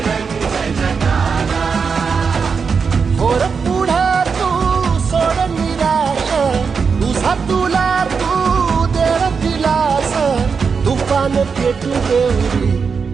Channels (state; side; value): quieter; left; 5.6 dB